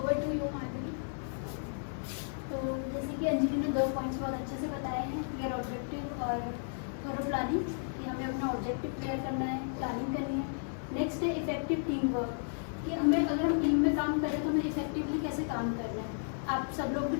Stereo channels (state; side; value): silent; right; digital silence